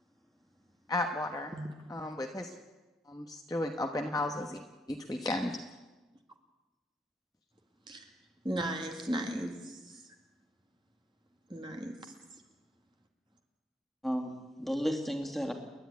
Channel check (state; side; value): normal; both; correlation 0.75